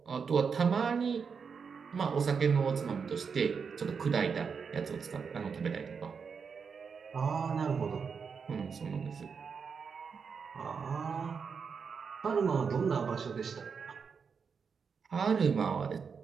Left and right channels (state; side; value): quieter; left; 5.9 dB